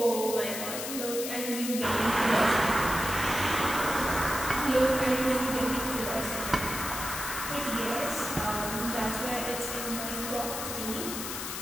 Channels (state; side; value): noise; left; hiss, 5 dB below the sound